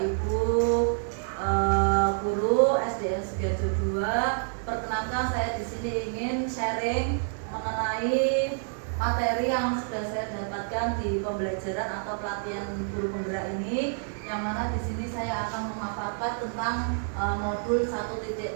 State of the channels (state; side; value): silent; left; 55 dB below the other